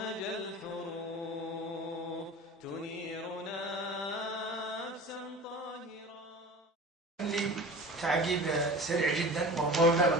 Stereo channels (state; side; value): normal; both; correlation 0.37